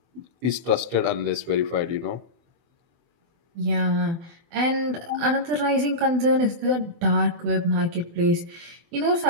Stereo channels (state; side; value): late; left; 24 ms